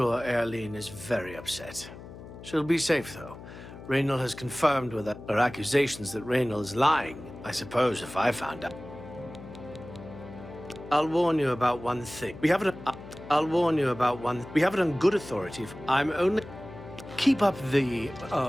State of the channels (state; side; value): noise; left; hum, 15 dB below the sound